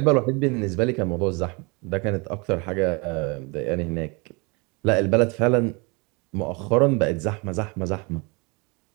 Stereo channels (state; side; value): quieter; left; 29.2 dB